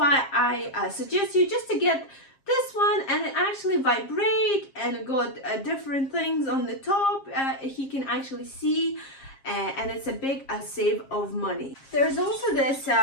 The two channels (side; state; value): right; late; 7.4 ms